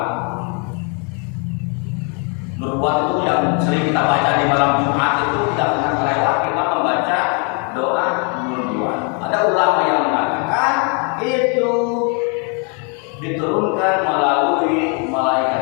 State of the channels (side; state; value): right; quieter; 37.0 dB